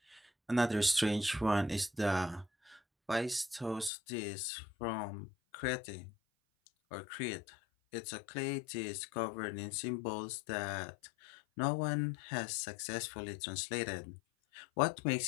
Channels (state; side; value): drops out; right; at 3.9 s